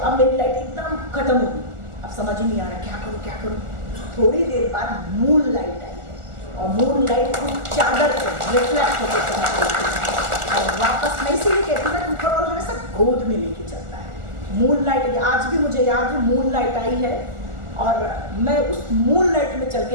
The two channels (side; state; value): left; late; 1.4 ms